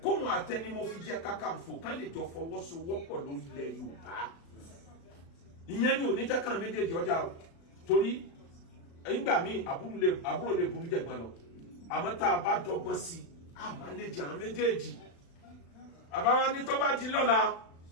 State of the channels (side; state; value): right; late; 36 ms